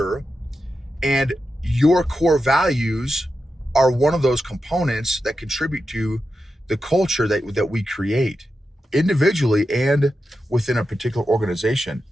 And your core values are one of those components that contribute to the culture that we create individually and within a particular organization.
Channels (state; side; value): normal; both; correlation 0.89